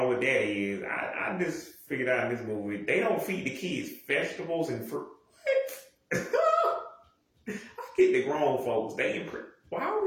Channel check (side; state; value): both; identical; correlation 1.00